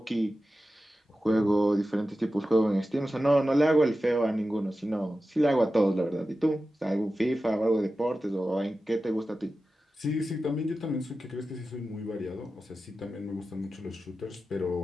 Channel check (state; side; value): normal; both; correlation 0.93